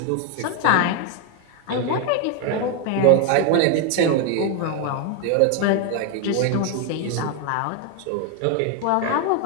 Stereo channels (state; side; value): different; both; correlation 0.01